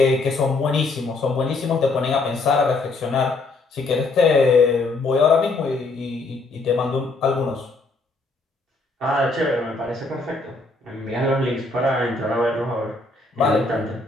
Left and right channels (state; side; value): quieter; right; 3.4 dB